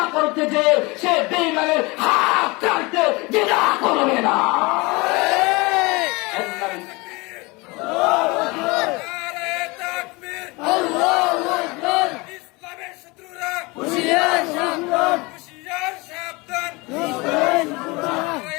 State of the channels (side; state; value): right; quieter; 25.1 dB